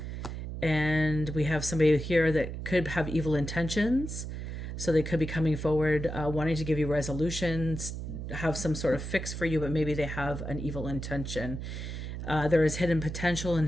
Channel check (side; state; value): right; noise; hum, 6 dB below the sound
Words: And we have somebody here that could have evil intentions. So they could be coming forward wanting to give you resolutions, have some sort of fix for you, but maybe they have an evil intention. There is hidden potential